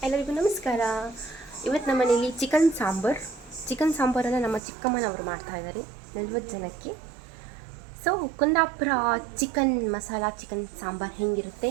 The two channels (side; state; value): left; drops out; at 4.6 s